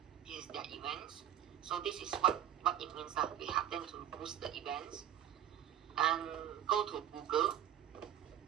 This is their events. So this is what it means that we have them to boost the events. And go to Google.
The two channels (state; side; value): quieter; left; 10.9 dB